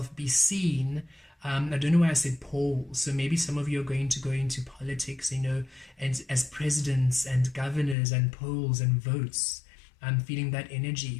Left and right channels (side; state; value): right; drops out; at 8.0 s